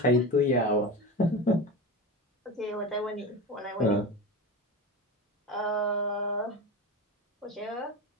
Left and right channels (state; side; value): normal; both; correlation 0.26